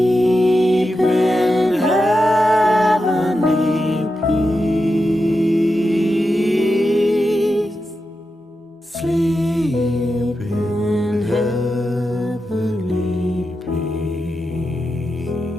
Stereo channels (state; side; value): normal; both; correlation 0.89